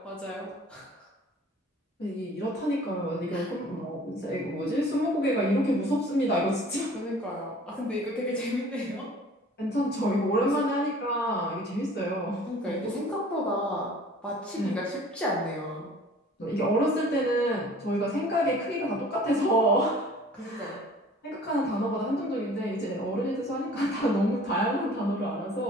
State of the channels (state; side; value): normal; both; correlation 0.49